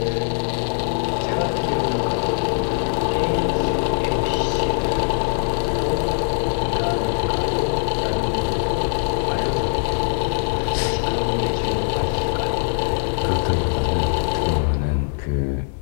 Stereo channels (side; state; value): right; silent; digital silence